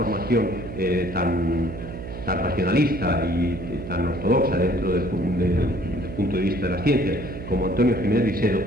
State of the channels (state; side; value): noise; right; hum, 9 dB below the sound